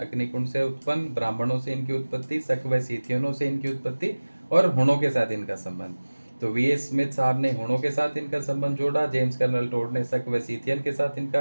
से उत्पन्न, ब्राह्मणों से इनकी उत्पत्ति, शक व सीथियनों से इनकी उत्पत्ति, और हुणों के साथ इनका संबंध। तो वी.एस. स्मिथ साहब ने हुणों के साथ इनका संबंध जोड़ा, जेम्स कर्नल टोड ने शक व सीथियन के साथ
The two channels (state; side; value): inverted; both; correlation -1.00